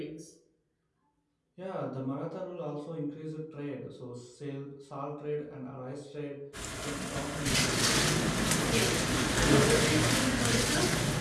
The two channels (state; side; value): identical; both; correlation 1.00